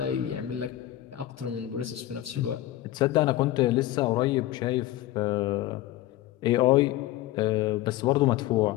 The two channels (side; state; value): right; quieter; 14.8 dB